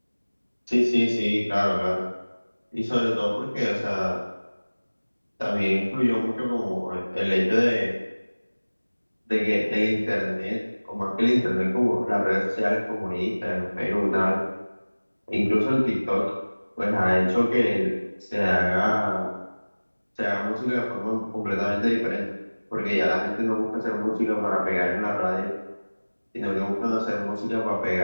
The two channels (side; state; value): both; inverted; correlation -1.00